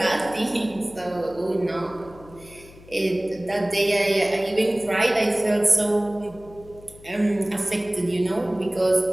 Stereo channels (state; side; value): noise; left; hum, 21 dB below the sound